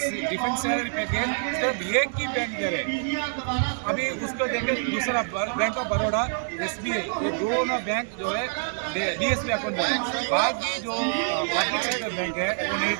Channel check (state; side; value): silent; left; 61 dB below the other